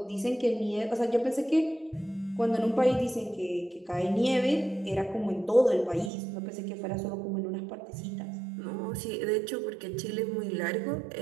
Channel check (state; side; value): drops out; left; at 6.1 s